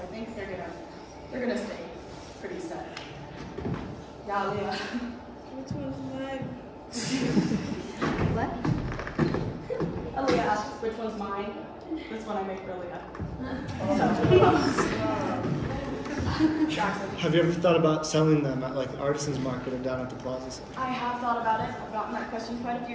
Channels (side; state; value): both; identical; correlation 1.00